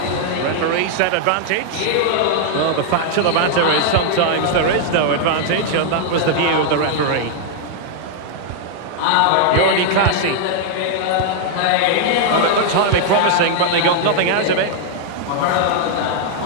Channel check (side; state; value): both; different; correlation 0.00